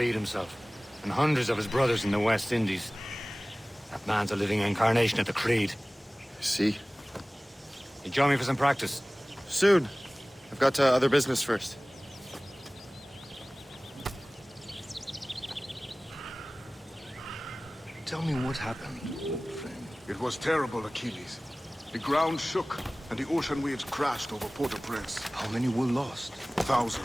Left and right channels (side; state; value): both; normal; correlation 0.98